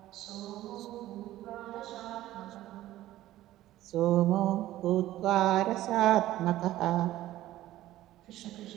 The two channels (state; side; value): quieter; left; 14.8 dB